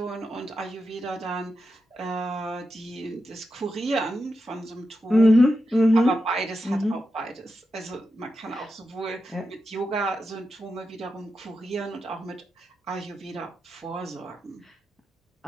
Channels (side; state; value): both; normal; correlation 0.88